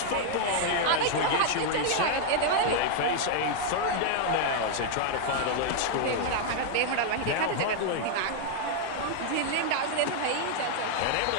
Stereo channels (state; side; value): different; both; correlation -0.01